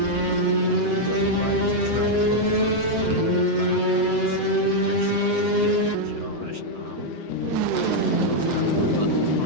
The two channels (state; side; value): late; left; 7.7 ms